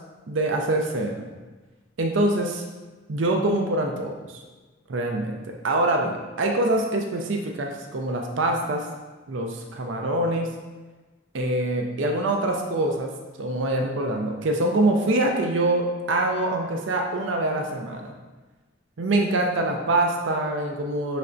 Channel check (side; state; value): both; normal; correlation 0.12